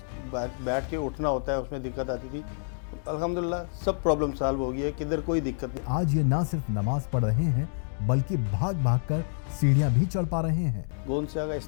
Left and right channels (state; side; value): silent; right; digital silence